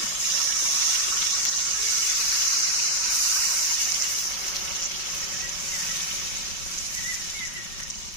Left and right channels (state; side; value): late; right; 5.3 ms